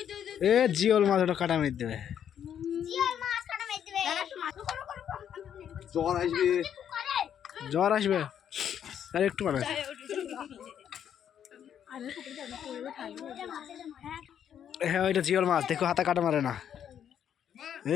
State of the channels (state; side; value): quieter; right; 9.2 dB